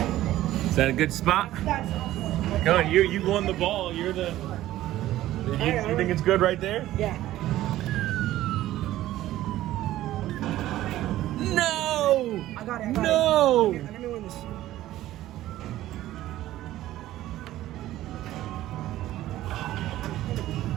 Is that a good spot? Come on, you won the ball. You're the. You think it's good right there? Yeah. No! I got it. No! Let me win this.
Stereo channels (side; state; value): left; quieter; 14.6 dB